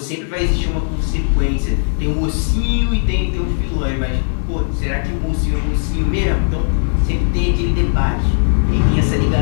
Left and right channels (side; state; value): right; silent; 64 dB below the other